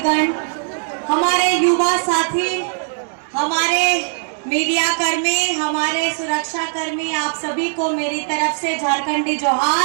हमारे युवा साथी, हमारे मीडिया कर्मी, हमारे सुरक्षा कर्मी, आप सभी को मेरी तरफ से झारखंडी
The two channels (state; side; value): silent; left; digital silence